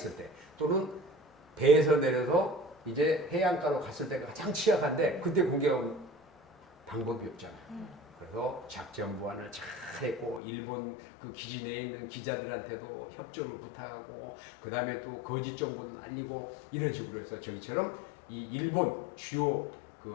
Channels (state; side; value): drops out; right; at 10.4 s